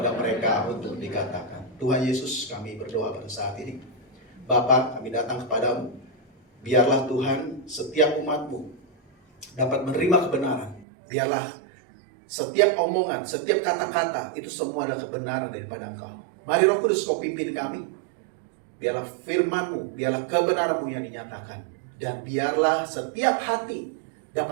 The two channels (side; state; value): left; drops out; at 10.9 s